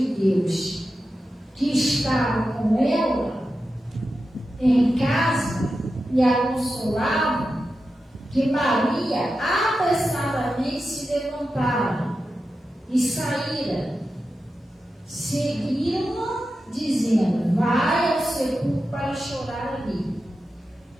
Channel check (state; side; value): normal; both; correlation 0.91